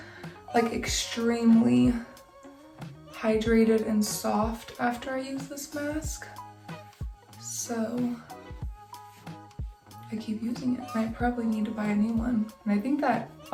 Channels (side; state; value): both; identical; correlation 1.00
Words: like extremely hydrated and soft after I use this mask. So I keep using it, and I probably need to buy a new one. And I think that